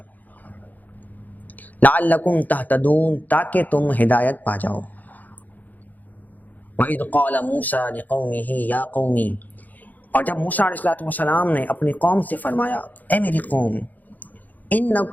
لعلکم تہتدون، تاکہ تم ہدایت پا جاؤ۔ وَإِذْ قَالَ مُوسَىٰ لِقَوْمِهِ يَا قَوْمِ، اور جب موسیٰ علیہ السلام نے اپنی قوم سے فرمایا، اے میری قوم،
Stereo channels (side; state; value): right; late; 0.082 ms